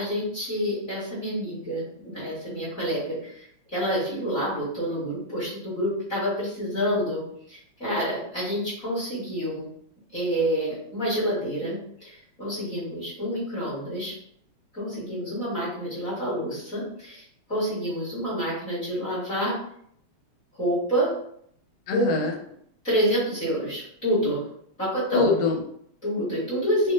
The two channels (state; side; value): late; right; 4.0 ms